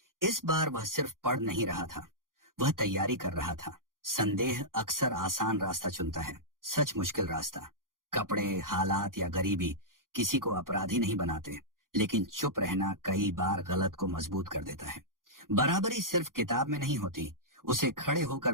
इस बार वह सिर्फ पढ़ नहीं रहा था, वह तैयारी कर रहा था। संदेह अक्सर आसान रास्ता चुनता है, सच मुश्किल रास्ता। कपड़े, हालात या गरीबी किसी को अपराधी नहीं बनाते, लेकिन चुप रहना कई बार गलत को मजबूत कर देता है। बराबरी सिर्फ किताब में नहीं होती, उसे खड़े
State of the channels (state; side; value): late; left; 0.90 ms